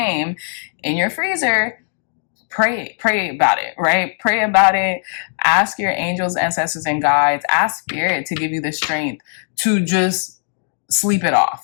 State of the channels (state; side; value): silent; right; digital silence